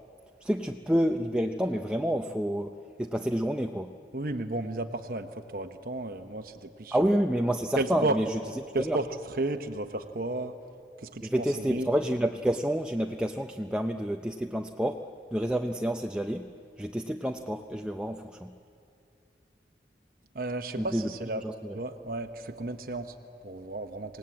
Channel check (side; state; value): both; normal; correlation 0.76